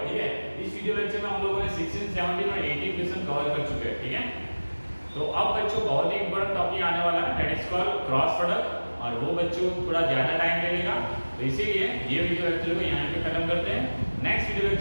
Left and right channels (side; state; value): both; inverted; correlation -1.00